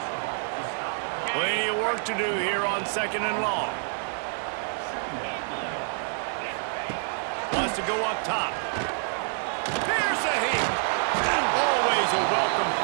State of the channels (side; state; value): left; silent; 60 dB below the other